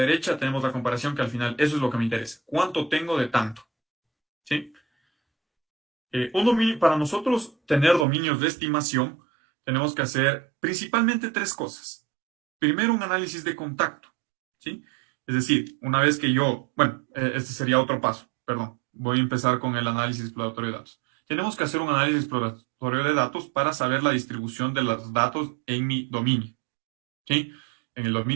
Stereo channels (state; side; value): drops out; left; at 8.1 s